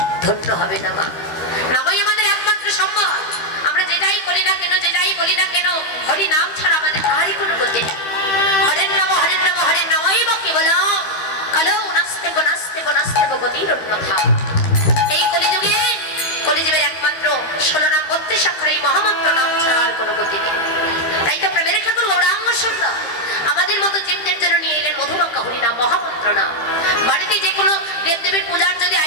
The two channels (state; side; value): late; right; 13 ms